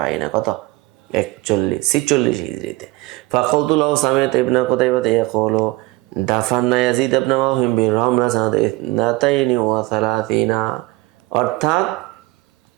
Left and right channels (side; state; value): left; quieter; 21.1 dB